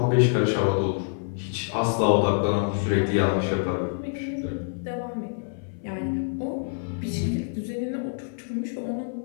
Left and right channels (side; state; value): right; silent; 57 dB below the other